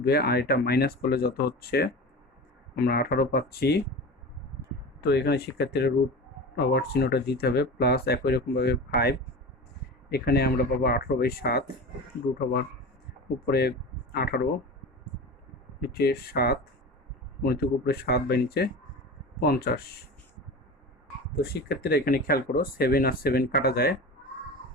আর এটা মাইনাস করলে যত হচ্ছে আমরা 18 পাচ্ছি। তো এখানে শিক্ষার্থীরা রুট ওভার চিহ্নটা দিতে হবে, প্লাস একই রকমভাবে 5, এখানে আমরা পাবো 18/7, রুট ওভার উপরে 18 নিচে 7 গুণিতক উপরে 7 বাই নিচে 50। তো শিক্ষার্থীরা এখানে খেয়াল করো, 7 আর 7 কাটা যায়,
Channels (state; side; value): normal; both; correlation 0.30